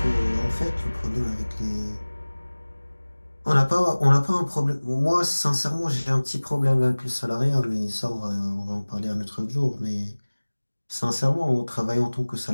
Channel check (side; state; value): both; inverted; correlation -1.00